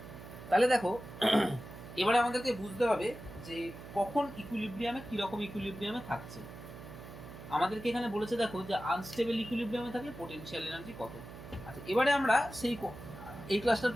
তাহলে দেখো এবারে আমাদেরকে বুঝতে হবে যে কখন ইকুইলিব্রিয়ামে কিরকম ইকুইলিব্রিয়ামে থাকছে। আমাদেরকে এখানে বলেছে দেখো যে আনস্টেবল ইকুইলিব্রিয়ামে থাকলে পোটেনশিয়াল এনার্জি কত। আচ্ছা এবারে আমরা সেই এই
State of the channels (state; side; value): noise; right; hum, 14 dB below the sound